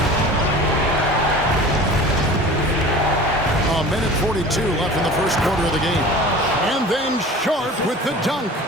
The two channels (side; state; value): both; normal; correlation 0.40